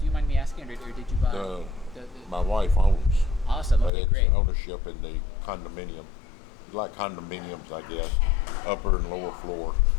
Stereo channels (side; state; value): right; drops out; at 3.9 s